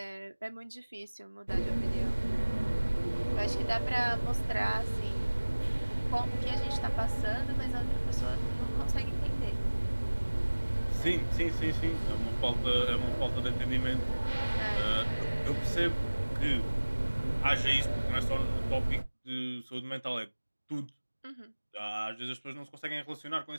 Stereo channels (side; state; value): both; inverted; correlation -1.00